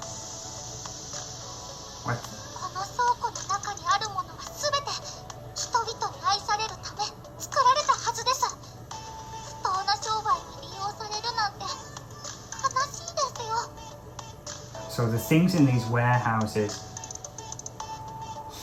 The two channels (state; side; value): identical; both; correlation 1.00